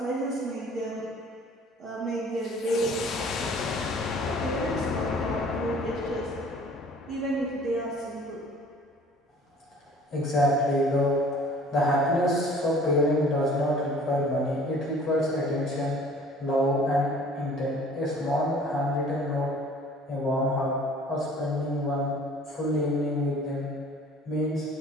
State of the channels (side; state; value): both; normal; correlation 0.50